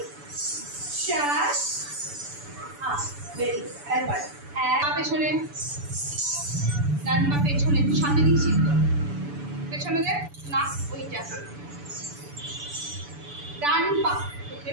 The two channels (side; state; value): left; late; 6.9 ms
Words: 7 8 ভেরি একবার এক পা পেছনে ডান পা পেছনে তুই সামনে দিয়েছিস তো পেছনে দে না ওইটা ডান পা না